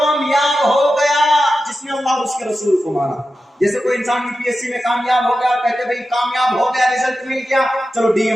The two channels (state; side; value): normal; both; correlation 0.92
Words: ہو گیا جس نے اللہ اور اس کے رسول کو مانا۔ جیسے کوئی انسان UPSC میں کامیاب ہو گیا، کہتے بھئی کامیاب ہو گیا، رزلٹ مل گیا، چلو ڈی